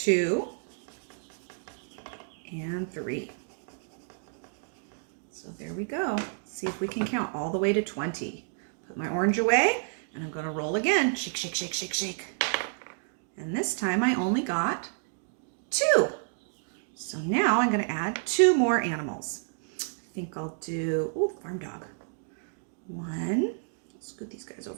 and 3. So there we go. Let's see if we can count all the way to 20. Put my orange away, and I'm going to roll again. Shake, shake, shake, shake, shake. And this time I only got 2. So now I'm going to add 2 more animals. I think I'll do, farm dog. 1, scoot these guys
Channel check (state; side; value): silent; left; digital silence